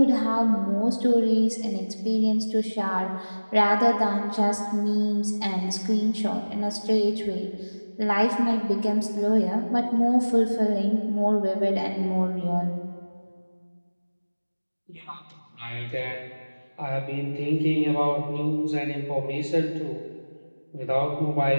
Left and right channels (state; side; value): inverted; both; correlation -1.00